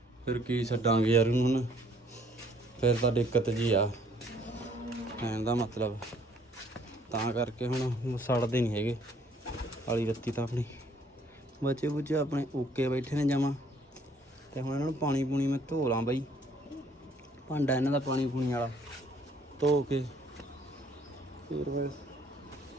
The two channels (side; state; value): both; normal; correlation 0.62